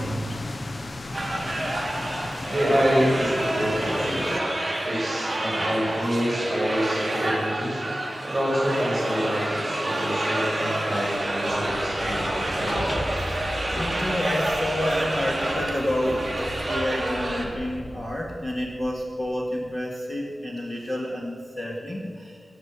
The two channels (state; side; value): normal; both; correlation 0.95